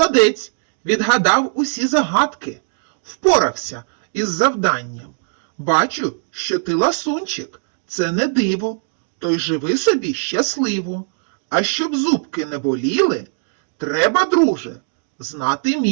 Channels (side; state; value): left; silent; digital silence